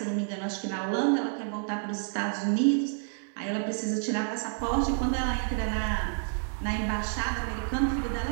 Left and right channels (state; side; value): silent; left; digital silence